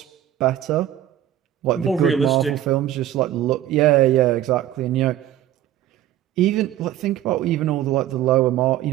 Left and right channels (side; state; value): left; quieter; 12.1 dB